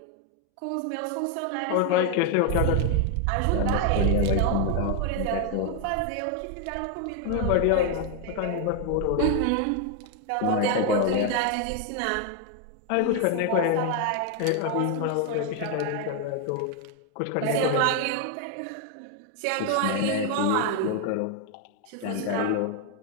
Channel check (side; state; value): both; different; correlation 0.01